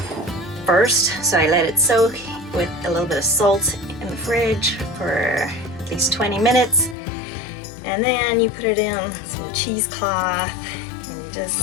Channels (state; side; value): drops out; right; at 7.0 s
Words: first. So I let it soak with a little bit of salt in the fridge for at least 20 minutes. And then you put it in some cheesecloth and you